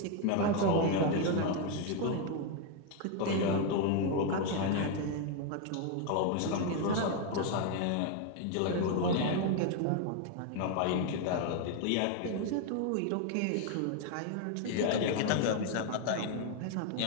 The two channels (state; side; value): different; both; correlation 0.01